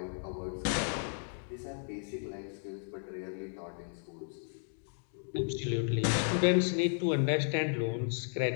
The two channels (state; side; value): silent; right; digital silence